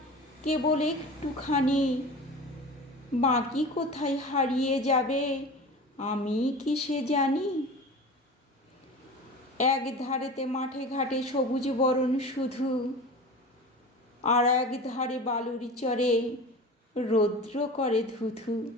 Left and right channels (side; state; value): both; normal; correlation 0.34